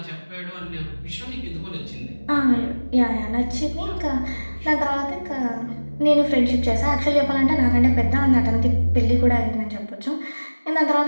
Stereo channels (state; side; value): inverted; both; correlation -1.00